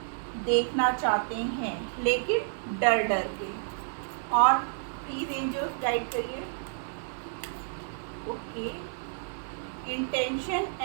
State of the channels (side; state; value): left; silent; digital silence